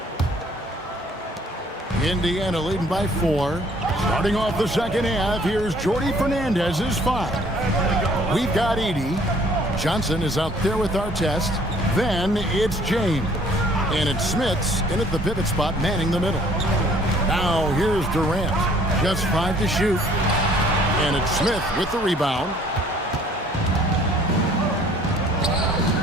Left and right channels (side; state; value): both; normal; correlation 0.57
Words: Indiana leading by 4. Starting off the second half, here's Jordy Fernandez's 5. We've got Edey. Johnson is out there with Artest. Then it's James. And it's Smith's in at the pivot spot, manning the middle. Now here's Durant. Just 5 to shoot. And it's Smith with the rebound.